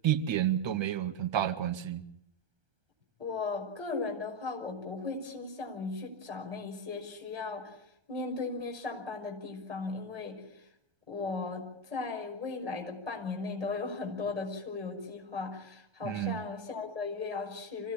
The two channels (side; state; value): left; late; 1.3 ms